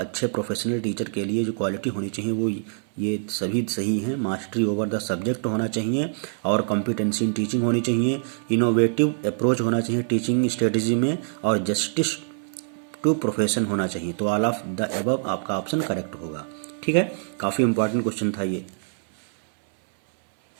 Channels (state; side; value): silent; left; 61 dB below the other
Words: प्रोफेशनल टीचर के लिए जो क्वालिटी होनी चाहिए वो ये सभी सही हैं। मास्टरी ओवर द सब्जेक्ट होना चाहिए और कॉम्पिटेंसी इन टीचिंग होनी चाहिए, इनोवेटिव अप्रोच होना चाहिए टीचिंग स्ट्रेटजी में, और जस्टिस टू प्रोफेशन होना चाहिए। तो ऑल ऑफ द अबव आपका ऑप्शन करेक्ट होगा, ठीक है। काफ़ी इंपॉर्टेंट क्वेश्चन था ये,